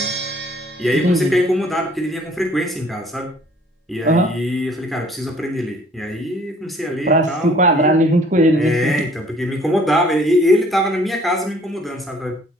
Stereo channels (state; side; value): normal; both; correlation 0.57